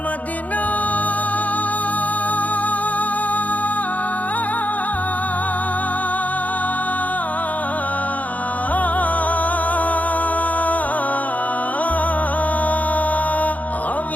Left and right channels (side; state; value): right; late; 0.075 ms